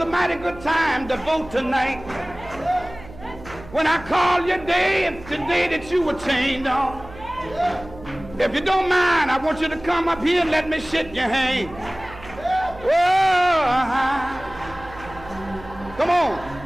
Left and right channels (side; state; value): right; noise; hum, 17 dB below the sound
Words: mighty good time to vote tonight. When I call your day, it's the day that you were chained on. If you don't mind, I want you to come up here and let me shake your hand. Oh, come on.